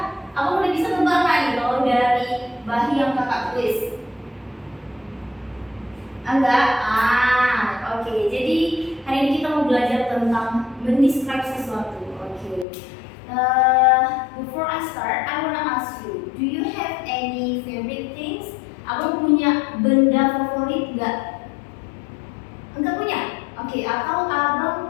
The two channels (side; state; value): right; drops out; at 12.7 s